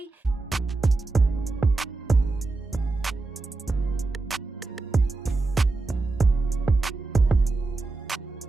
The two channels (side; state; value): left; quieter; 3.4 dB